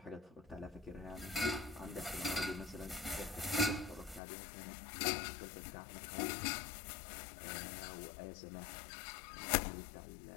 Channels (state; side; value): drops out; right; at 4.2 s